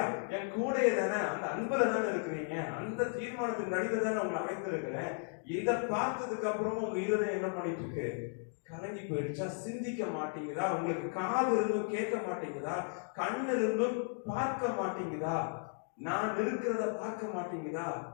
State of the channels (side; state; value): right; silent; 54 dB below the other